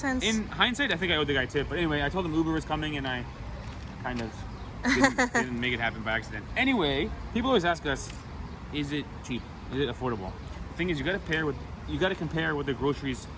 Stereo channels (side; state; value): both; identical; correlation 1.00